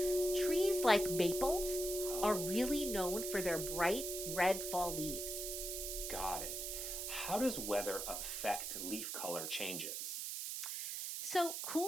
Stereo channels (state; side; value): noise; right; hiss, 4 dB below the sound